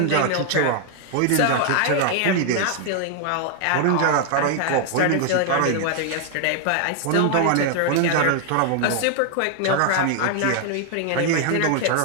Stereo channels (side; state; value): both; different; correlation 0.00